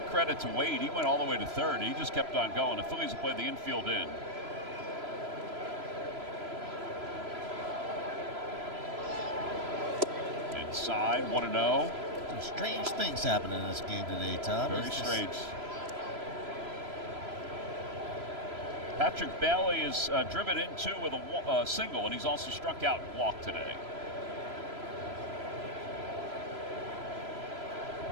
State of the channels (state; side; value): late; left; 3.0 ms